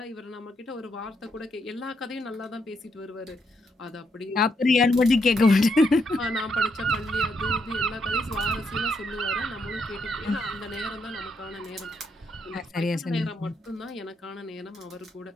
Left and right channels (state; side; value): normal; both; correlation 0.78